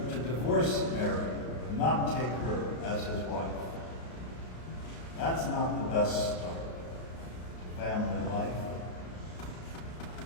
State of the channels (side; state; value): right; late; 33 ms